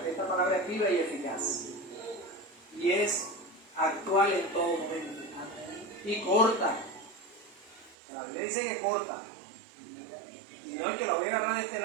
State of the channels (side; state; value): left; drops out; at 8.0 s